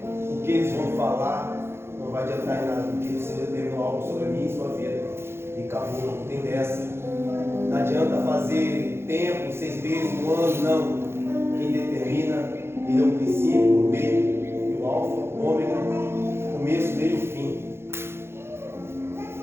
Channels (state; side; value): late; left; 0.12 ms